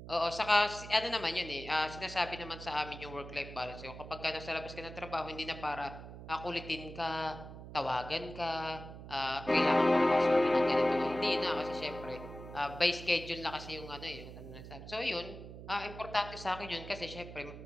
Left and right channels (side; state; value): right; noise; hum, 13 dB below the sound